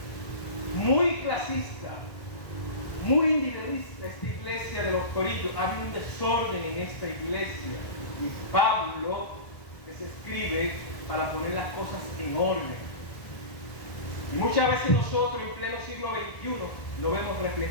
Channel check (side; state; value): right; late; 1.5 ms